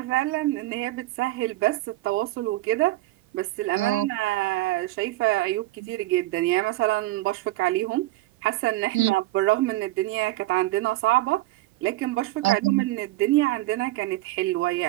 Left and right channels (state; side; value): quieter; left; 17.6 dB